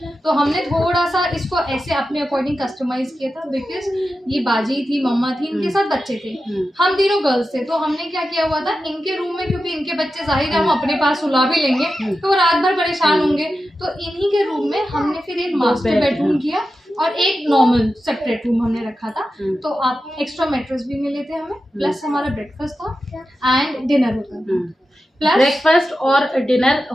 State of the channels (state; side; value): normal; both; correlation 0.91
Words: तो हमने थोड़ा सा इसको ऐसे अपने अकॉर्डिंग कस्टमाइज किया था, बिकॉज ये बाजी थी, मम्मा थी, इनके साथ बच्चे थे, हम तीनों गर्ल्स थे। तो हमने क्या किया हुआ था, इनके रूम में, क्योंकि इनके बच्चे जाहिर है हम अपने पास सुला भी लेंगे तो वो रात भर परेशान होंगे, तो इन्हीं के रूम में हमने फिर एक मास्टर बेडरूम किया और एक नॉर्मल सेपरेट रूम हमने रखा था। तो आप एक्स्ट्रा मैट्रेस भी मिले थे हमें, प्लस हमारा ब्रेकफास्ट था एंड डिनर होता था। प्लस ब्रेकफास्ट और डिनर